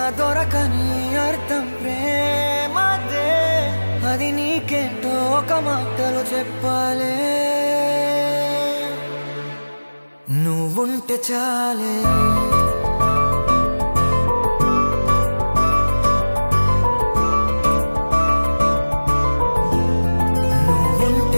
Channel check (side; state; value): both; inverted; correlation -1.00